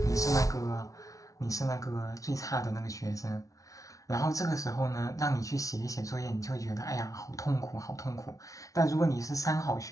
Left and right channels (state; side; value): late; right; 0.17 ms